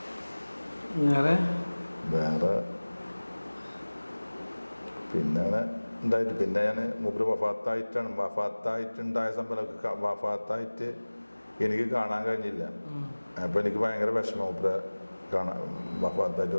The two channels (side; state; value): both; inverted; correlation -1.00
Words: വേറെ പിന്നെ അങ്ങനെ ഉണ്ടായിട്ട് പിന്നെ ഞാൻ മൂപ്പര് വഫാത്തായിട്ടുണ്ടായ സംഭവം വഫാത്തായിട്ട് എനിക്ക് കാണാൻ കഴിഞ്ഞില്ല. അപ്പോൾ എനിക്ക് ഭയങ്കര വിഷമം, മൂപ്പരെ